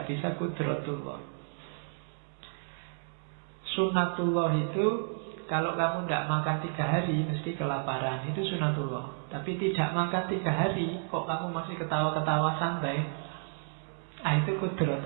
bisa qudratullah. Sunnatullah itu kalau kamu tidak makan 3 hari mesti kelaparan, itu sunnatullah. Tapi tidak makan 3 hari kok kamu masih ketawa-ketawa santai, itu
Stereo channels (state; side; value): silent; left; digital silence